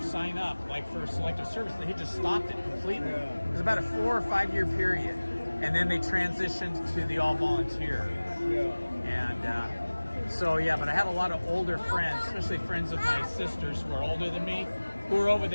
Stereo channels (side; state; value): both; inverted; correlation -1.00